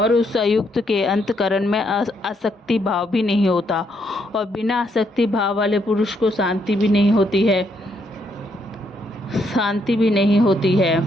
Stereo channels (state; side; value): normal; both; correlation 0.74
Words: उस अयुक्त के अंतःकरण में आसक्ति भाव भी नहीं होता, और बिना आसक्ति भाव वाले पुरुष को शांति भी नहीं होती